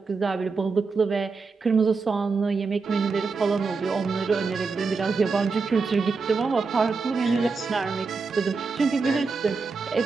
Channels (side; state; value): left; quieter; 4.5 dB